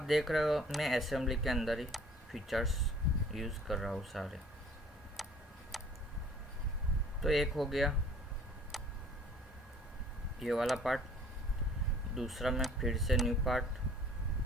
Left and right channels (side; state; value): both; normal; correlation 0.54